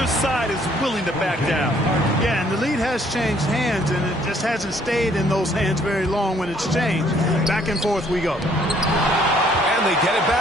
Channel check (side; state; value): both; normal; correlation 0.63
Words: side is willing to back down. Yeah, and the lead has changed hands, and it just hasn't stayed in those hands very long when it's changed. Back and forth we go. And they get it